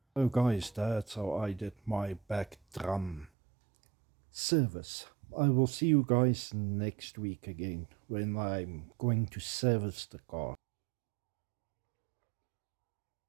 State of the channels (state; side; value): drops out; left; at 3.3 s